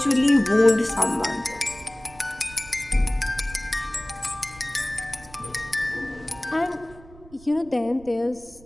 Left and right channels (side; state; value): right; noise; rumble, 22 dB below the sound